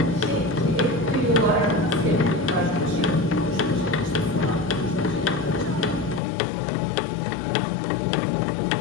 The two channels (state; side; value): drops out; right; at 6.2 s